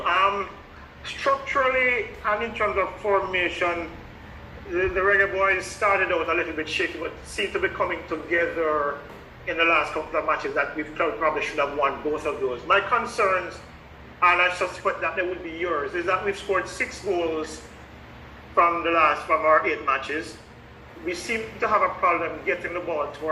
Structurally and in terms of formation, the Reggae Boyz started out a little bit shaky, but seem to be coming together in the last couple of matches that we probably should have won both of those. My concerns and I suspect that they would be yours, is that we've scored 6 goals from our 8 matches. We seem to have a problem getting the ball to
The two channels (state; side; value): identical; both; correlation 1.00